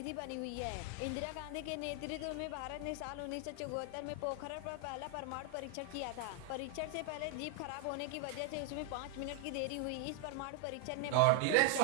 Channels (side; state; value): both; different; correlation 0.00